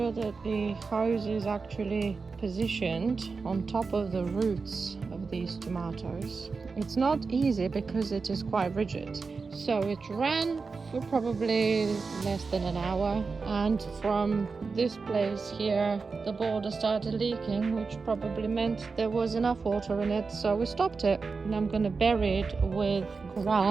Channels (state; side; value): quieter; left; 4.6 dB